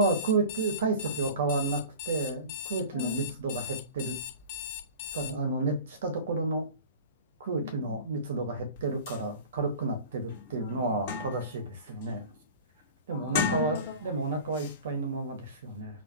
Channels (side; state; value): both; inverted; correlation -0.38